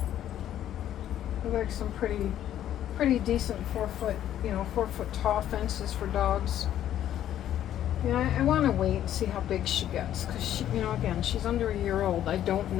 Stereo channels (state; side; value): quieter; right; 11.4 dB